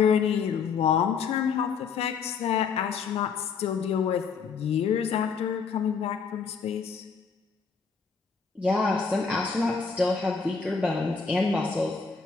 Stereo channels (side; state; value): right; quieter; 5.5 dB